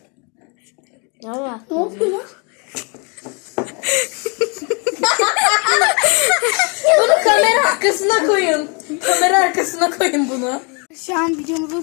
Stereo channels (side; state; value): right; quieter; 33.9 dB